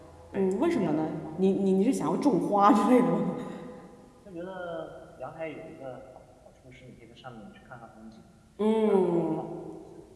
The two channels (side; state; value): both; identical; correlation 1.00